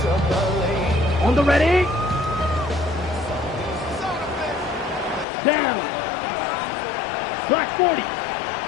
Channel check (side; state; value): right; drops out; at 5.2 s